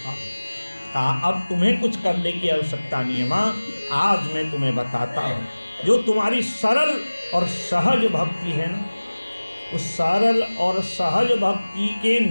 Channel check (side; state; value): both; inverted; correlation -1.00